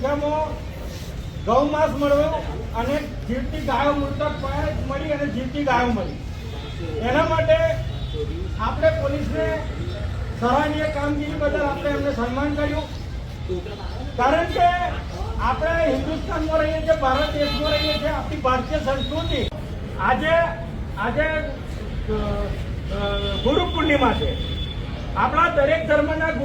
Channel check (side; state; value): both; identical; correlation 1.00